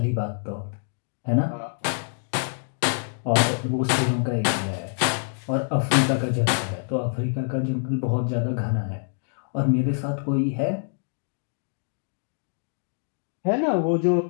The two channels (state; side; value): silent; right; digital silence